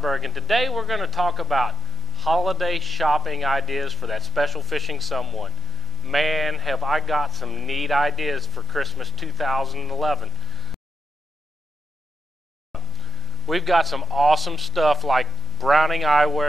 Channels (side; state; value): both; normal; correlation 0.92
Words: and today we're going to talk about holiday shopping ideas for that special fishing someone. Man, have I got some neat ideas for Christmas 2011. We've got some awesome stuff like Browning